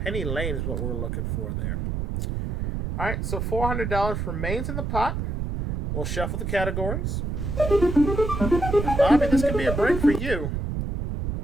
Lane is what we're looking for there. All right, so $400 remains in the pot. We'll shuffle the categories. And Bobby, this could be a break for you.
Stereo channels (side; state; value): right; noise; rumble, 3 dB below the sound